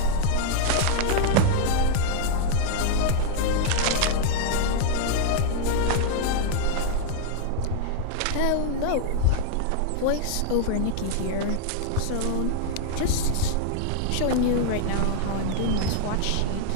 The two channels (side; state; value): both; different; correlation 0.00